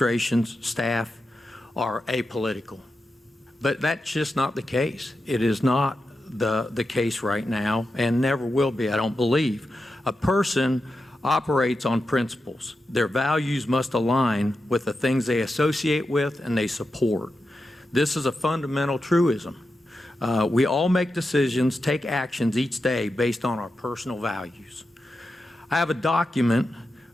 staff are apolitical. But that's just not the case. It is not the case right now and never will be, I don't believe. A person operates on principles. Their values must align with the things they associate with and they support. This is a fundamental truism. We all make decisions, take actions each day based on our personal values. I have a document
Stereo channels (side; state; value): both; normal; correlation 0.89